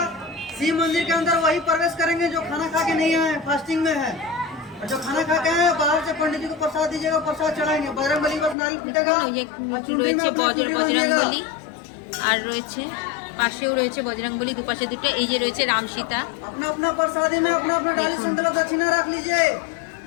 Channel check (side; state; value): right; drops out; at 8.6 s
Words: शिव मंदिर के अंदर वही प्रवेश करेंगे जो खाना खा के नहीं आए, फास्टिंग में है। और जो खाना खा के आए बाहर से पंडित जी को प्रसाद दीजिएगा, प्रसाद चढ़ाएंगे। बजरंगबली बस नारियल फूटेगा। ये রয়েছে বজরংবলী। আর রয়েছে পাশেও রয়েছে বজরংবলী, দুপাশে দুটো। এই যে রয়েছে রাম সীতা। अपना अपना प्रसादी में अपना अपना डाली संकल्प दक्षिणा रख लीजिए।